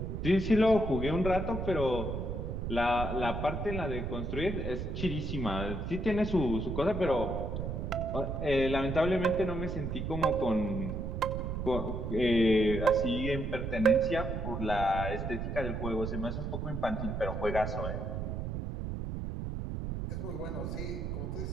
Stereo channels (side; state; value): right; noise; rumble, 4 dB below the sound